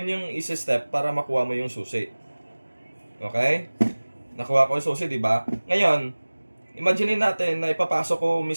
yung easy step para makuha mo yung susi. Okay? Nakuha ko yung susi, di ba? Ngayon, imagine natin na ipapasok ko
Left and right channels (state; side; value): inverted; both; correlation -1.00